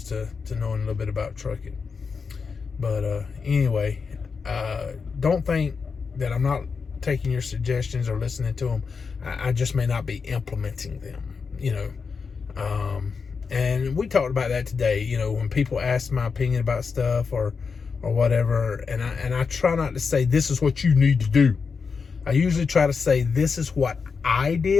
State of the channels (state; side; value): quieter; right; 5.3 dB